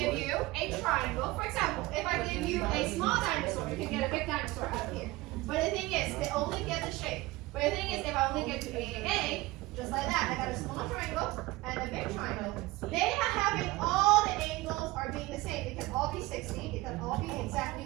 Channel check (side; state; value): left; quieter; 20.2 dB